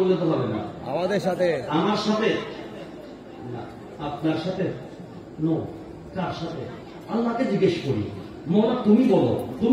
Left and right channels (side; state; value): both; identical; correlation 1.00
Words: তো হবে না। আমাদের সাথে, আমার সাথে না, আপনার সাথে, নো। কার সাথে? আল্লাহকে জিজ্ঞেস করি, মওলা তুমি বলো,